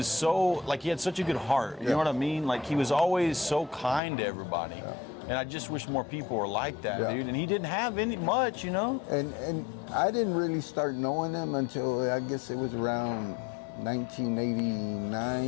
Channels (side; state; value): right; drops out; at 4.0 s